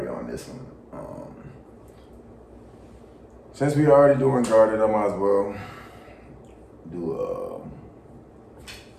on this one. Since we already doing Guarded, I might as well do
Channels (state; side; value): identical; both; correlation 1.00